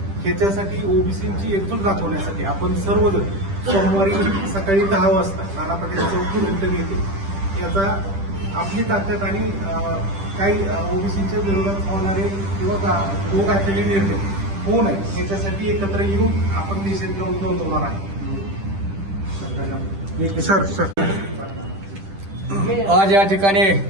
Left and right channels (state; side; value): late; left; 10 ms